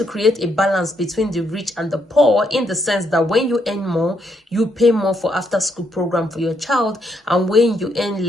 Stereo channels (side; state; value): both; normal; correlation 0.76